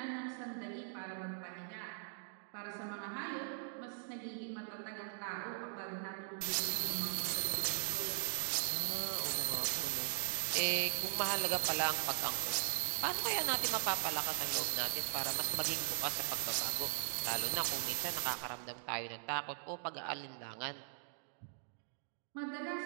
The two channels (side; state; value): left; silent; digital silence